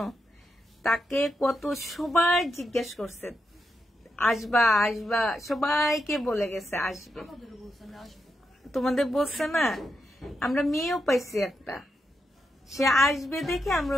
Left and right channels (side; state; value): both; normal; correlation 0.85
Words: তাকে কত সবাই জিজ্ঞেস করছে আসবা আসবা, সবাইকে বলে গেছে আসবে। তোমাদের বলছে না? আমরা মেয়েও পাইছি একটা, সে আসবে দেখে আমরা